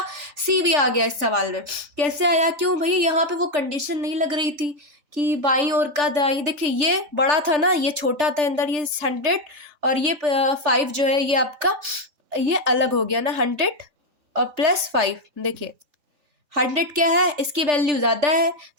सी वी आ गया इस सवाल में। कैसे आया, क्यों भैया, यहाँ पे वो कंडीशन नहीं लग रही थी कि बाईं ओर का दाईं, देखिए ये बड़ा था ना, ये छोटा था अंदर, ये 100 और ये 5 जो है ये आपका, ये अलग हो गया ना, 100 और +5, देखिए 100 क्या है, इसकी वैल्यू ज़्यादा है,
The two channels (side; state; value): left; late; 3.4 ms